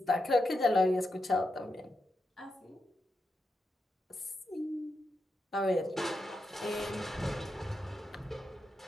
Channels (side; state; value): both; normal; correlation 0.86